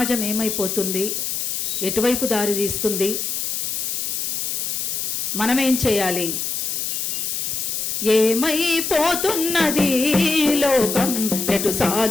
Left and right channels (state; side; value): noise; left; hiss, 2 dB below the sound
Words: ఏమైపోతుంది, ఎటువైపు దారి తీస్తుంది, మనమేం చేయాలి, ఏమైపోతున్నది లోకం, ఎటు